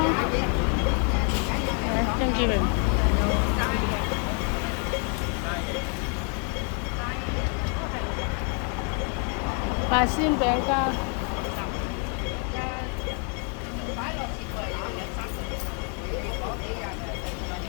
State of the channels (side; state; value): right; quieter; 39.0 dB